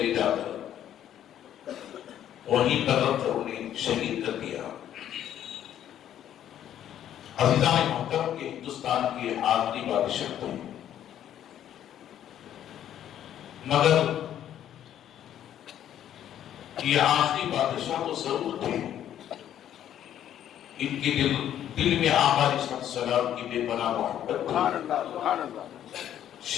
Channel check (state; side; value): quieter; right; 10.8 dB